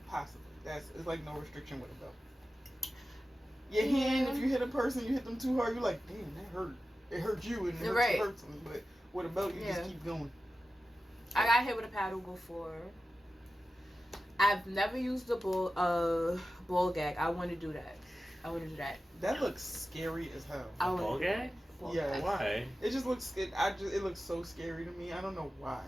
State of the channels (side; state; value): both; normal; correlation 0.94